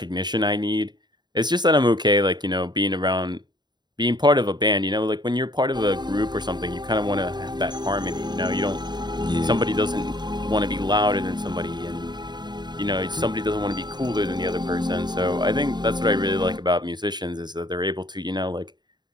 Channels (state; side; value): late; left; 0.21 ms